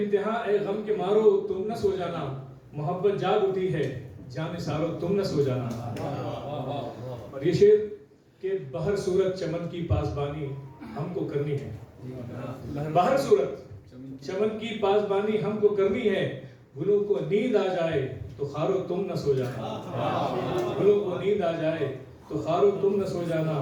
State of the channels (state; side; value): identical; both; correlation 1.00